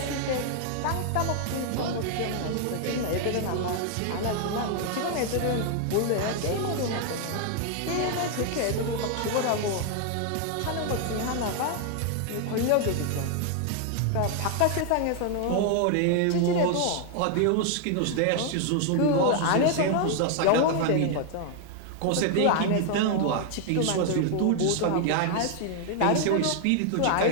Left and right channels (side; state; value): both; different; correlation 0.00